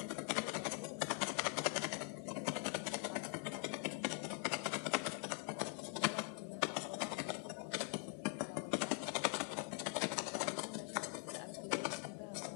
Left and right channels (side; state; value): right; quieter; 38.7 dB